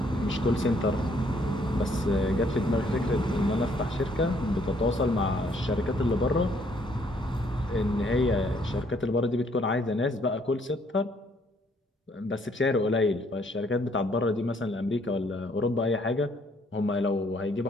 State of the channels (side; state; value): both; normal; correlation 0.66